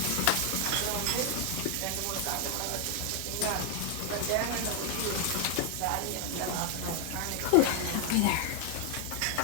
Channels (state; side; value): different; both; correlation 0.00